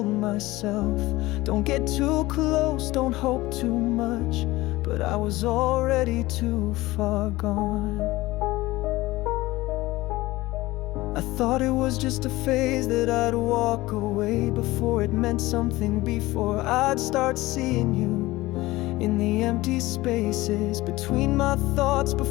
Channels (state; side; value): quieter; right; 18.9 dB